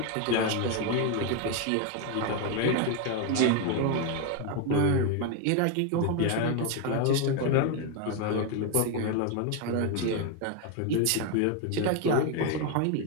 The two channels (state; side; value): different; both; correlation 0.01